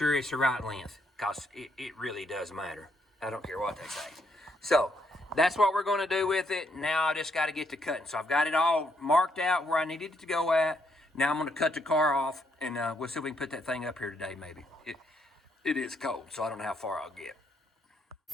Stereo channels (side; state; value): both; normal; correlation 0.74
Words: it's the right length. Because it really does matter. I don't care what they say. So that's what we're going to do with it. Now I just got to get to cutting. So I've got it all marked out where I needed it to go at. Now I'm going to cut the car off, and we'll see if we can put that thing up here today, maybe. It is cold, so I don't know how far I'll get.